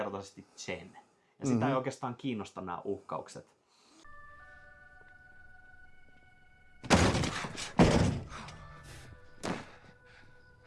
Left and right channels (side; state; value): both; identical; correlation 1.00